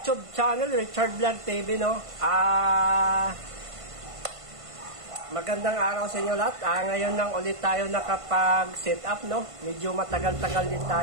channel, Richard Vlog TV, no? Magandang araw sa inyo lahat. Ngayon lang ulit tayo nakapag-set up, no? Medyo matagal-tagal din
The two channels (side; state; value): left; late; 1.5 ms